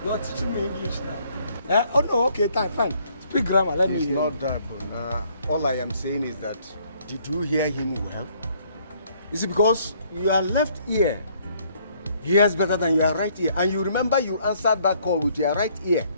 You're teaching me English now. Oh no, okay, fine. Speak grammar, let me hear. It's not that, all I am saying is that, did you hear him well? Is it because your left ear hears better than your right ear? And you remember you answered that call with your right ear.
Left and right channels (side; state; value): both; inverted; correlation -0.64